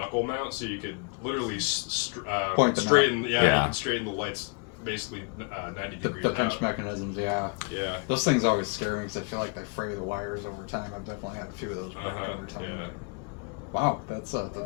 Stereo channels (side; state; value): right; quieter; 32.9 dB